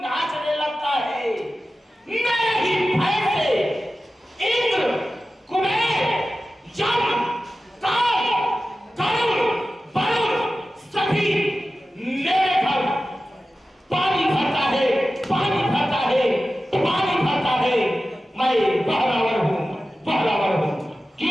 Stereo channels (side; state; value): both; normal; correlation 0.94